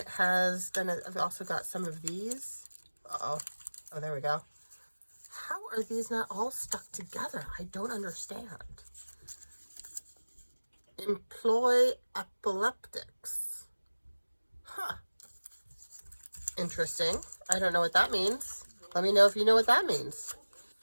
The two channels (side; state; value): both; inverted; correlation -1.00